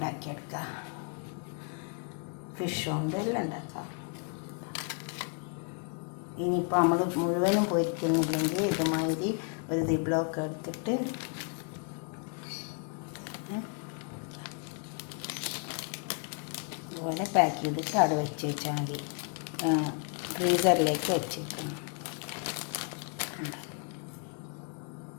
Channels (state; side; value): quieter; right; 39.6 dB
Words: ഫിഷ് കൊണ്ട് എല്ലാം ഉണ്ടാക്കാം. ഇനിയിപ്പോൾ നമ്മൾ മുഴുവനും പൊരിക്കുന്നില്ലെങ്കിൽ ഇതുമാതിരി ഒരു ദിബ്ലോക്ക് എടുത്തിട്ട് അതുപോലെ പാക്ക് ചെയ്തിട്ട് അവിടെ വെച്ച് വെച്ചാൽ മതി. ഫ്രീസറിലേക്ക് വെച്ചേക്കണം.